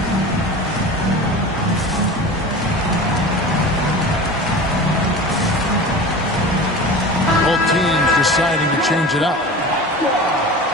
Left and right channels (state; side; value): normal; both; correlation 0.34